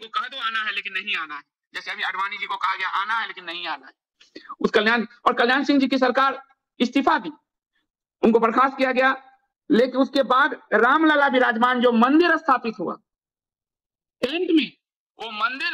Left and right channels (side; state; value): both; identical; correlation 1.00